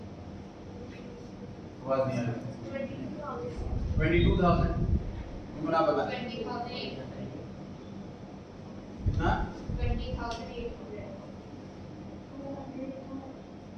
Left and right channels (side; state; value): both; identical; correlation 1.00